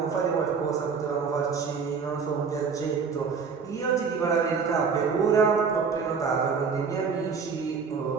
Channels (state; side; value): quieter; left; 5.6 dB